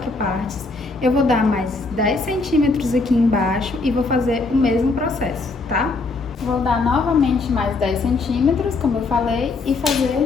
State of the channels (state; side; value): quieter; right; 3.7 dB